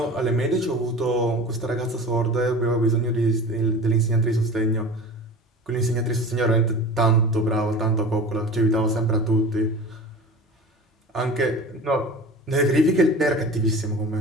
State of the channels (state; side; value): normal; both; correlation 0.36